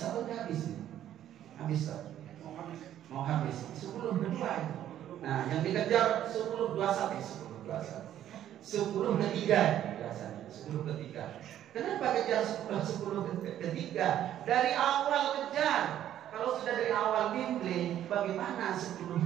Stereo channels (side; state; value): left; quieter; 11.4 dB